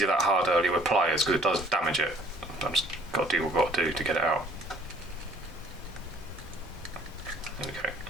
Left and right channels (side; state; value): both; normal; correlation 0.56